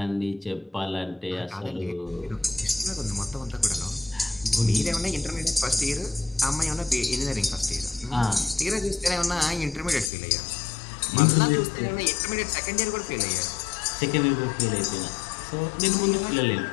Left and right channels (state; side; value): drops out; right; at 10.1 s